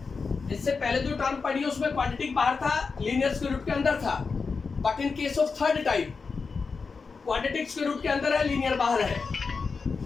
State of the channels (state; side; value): quieter; right; 4.8 dB